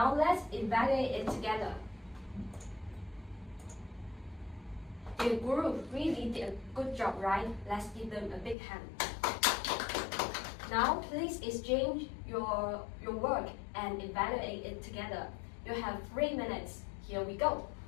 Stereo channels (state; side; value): drops out; right; at 8.6 s